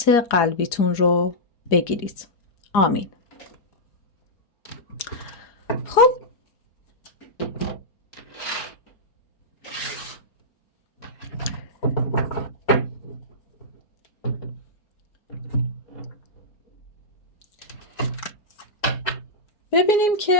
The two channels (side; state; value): right; late; 4.4 ms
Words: قلبیتون رو بگیرید. آمین. خب ببینیم